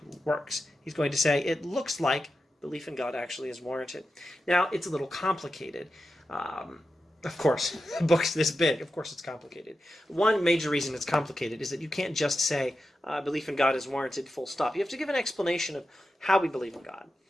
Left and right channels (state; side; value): normal; both; correlation 0.90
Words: works. He's going to say it looks like belief in God actually is warranted. Now, it's a little complicated. Of course, a book's this big. Of course it's complicated. One major reason it's complicated is that you can't just say belief in God is warranted, full stop. You have to give an explanation of how we believe in God.